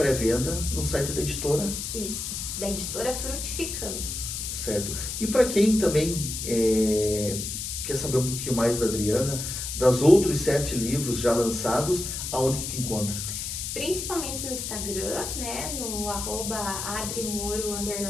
no site da editora? Isso, da editora Frutificando. Certo. E para quem também quer saber um pouquinho mais da Adriana, das outros 7 livros já lançados, aonde que te encontra? Principalmente no Instagram, né, no @adrimoro_,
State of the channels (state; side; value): noise; left; hiss, 5 dB below the sound